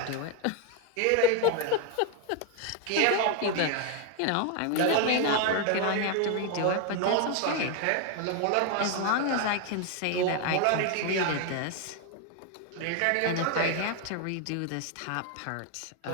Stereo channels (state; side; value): different; both; correlation 0.01